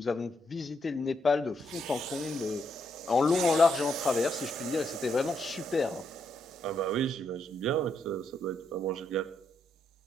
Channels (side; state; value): both; normal; correlation 0.77